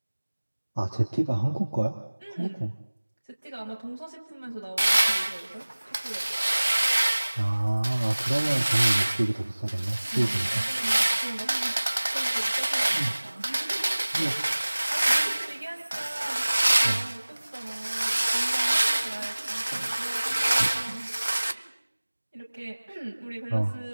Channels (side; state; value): both; inverted; correlation -1.00